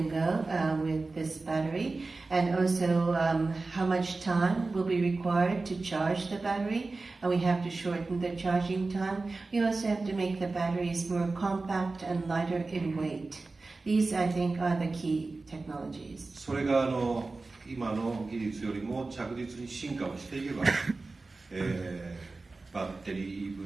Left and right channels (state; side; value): quieter; left; 3.6 dB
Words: go with this battery, and also how much time will be required to charge the battery. And we have to shorten the charging time. We also have to make the batteries more compact and lighter in weight. These, I think, are the key technologies. それが今の技術よりも着実に進化をしていけば、バッテリ